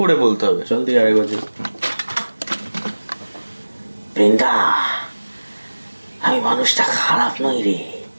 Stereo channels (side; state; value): both; inverted; correlation -1.00